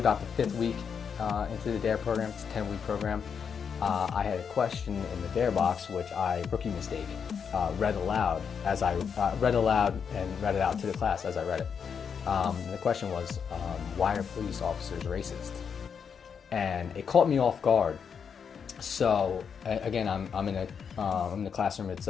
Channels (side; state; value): right; quieter; 6.8 dB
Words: the 5th week into the DARE program. It's a 10-week program. I had a question in the DARE box, which rookie mistake, read aloud and read it out to the class as I read it. The question was, why are police officers racist? And it caught me off guard. So again, I'm in the classroom. It's